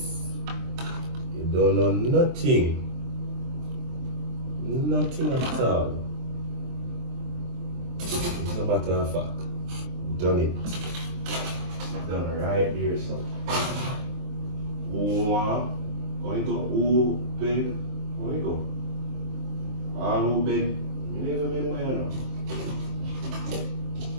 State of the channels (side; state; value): left; late; 23 ms